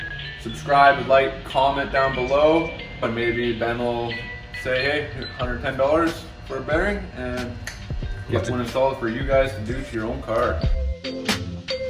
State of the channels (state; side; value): identical; both; correlation 1.00